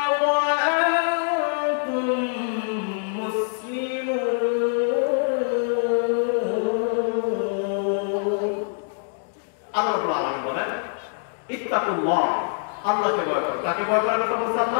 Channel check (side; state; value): right; silent; digital silence